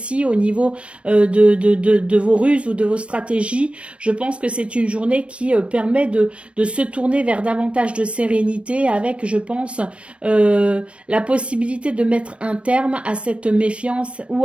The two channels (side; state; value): left; late; 0.060 ms